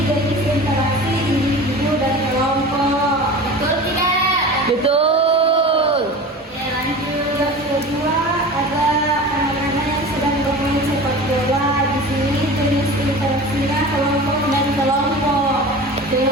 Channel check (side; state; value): both; normal; correlation 0.35